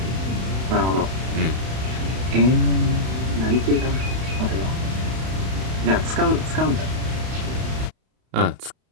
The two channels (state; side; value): late; left; 32 ms